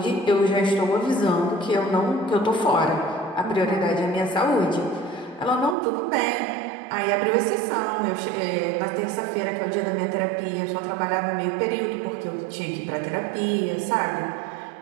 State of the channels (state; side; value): drops out; left; at 5.8 s